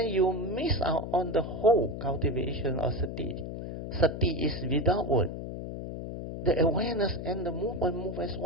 you miss out on the whole cultivation of sati. Sati is without word. The awareness and the movement move as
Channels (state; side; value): noise; left; hum, 7 dB below the sound